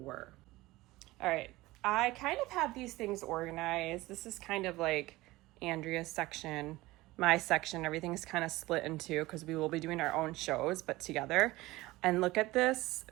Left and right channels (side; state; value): left; quieter; 19.2 dB